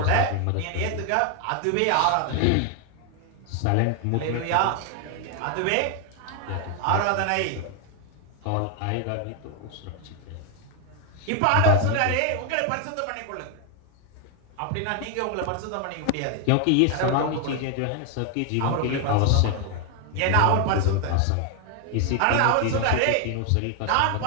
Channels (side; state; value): both; different; correlation 0.00